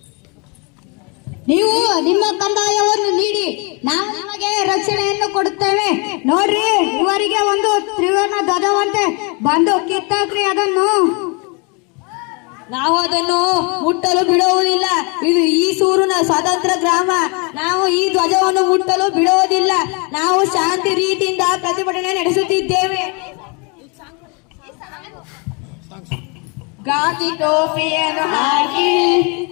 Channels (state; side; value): quieter; right; 32.5 dB